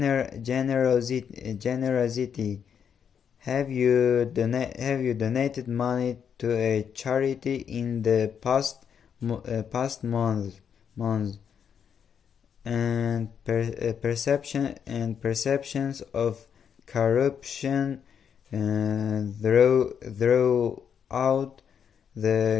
Have you donated money to a charity in the past month? And perceptions of corruption throughout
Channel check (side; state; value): right; quieter; 7.6 dB